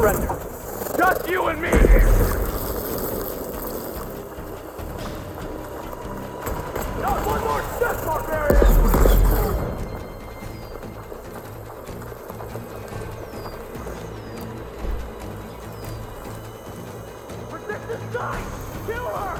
Just you and me here. Not one more step, barbarian! Protect this guy! Kill her!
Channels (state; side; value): identical; both; correlation 1.00